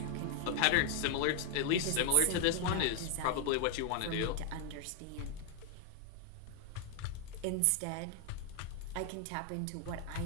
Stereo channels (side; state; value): both; different; correlation 0.00